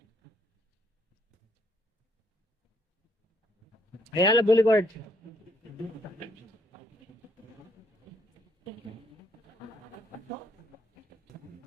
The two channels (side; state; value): both; normal; correlation 0.70